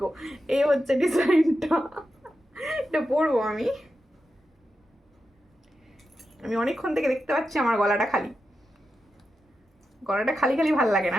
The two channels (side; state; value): both; normal; correlation 0.89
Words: এই হচ্ছে ডিজাইনটা, এটা পরবো আমি। আমি অনেকক্ষণ থেকে দেখতে পাচ্ছি আমার গলাটা খালি। গলাটা খালি খালি ভালো লাগে না,